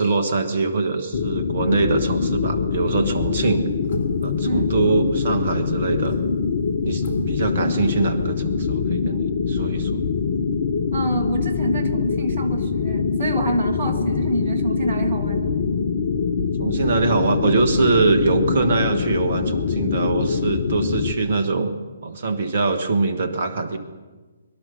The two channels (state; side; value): inverted; both; correlation -0.69